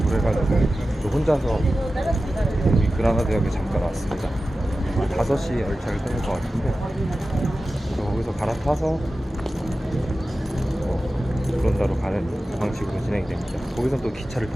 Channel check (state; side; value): normal; both; correlation 0.94